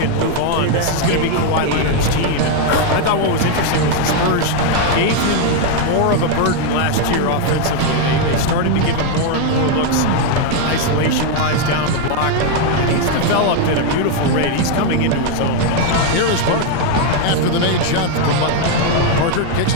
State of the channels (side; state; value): both; different; correlation 0.01